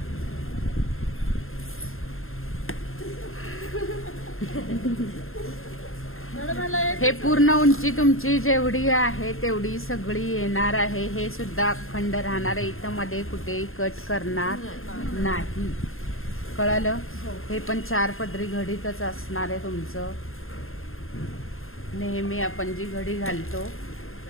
हे पूर्ण उंची तुमची जेवढी आहे तेवढी सगळी येणार आहे. हे सुद्धा अखंड राहणार आहे, इथं मध्ये कुठेही कट करणार नाही, कळालं. हे पण 4 पदरी घडीतच असणार आहे तुमचं. नेहमी आपण जी घडी घालतो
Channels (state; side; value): late; right; 0.61 ms